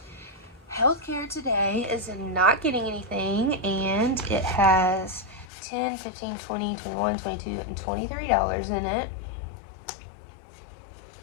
healthcare today is not getting anything, and it has $10, $15, $20, $21, $22, and $23 in it.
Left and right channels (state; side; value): drops out; right; at 5.5 s